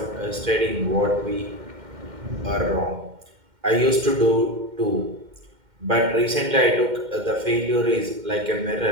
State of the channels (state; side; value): late; left; 2.1 ms